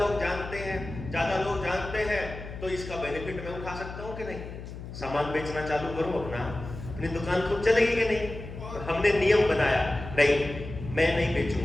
जानते हैं, ज्यादा लोग जानते हैं तो इसका बेनिफिट मैं उठा सकता हूं कि नहीं? सामान बेचना चालू करूं अपना, अपनी दुकान खुद चलेगी कि नहीं? हमने नियम बनाया, नहीं मैं नहीं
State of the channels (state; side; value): noise; left; hum, 11 dB below the sound